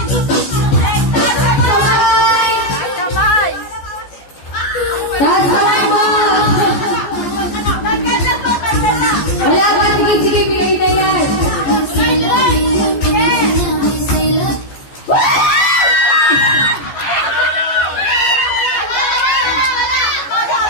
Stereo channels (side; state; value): right; late; 14 ms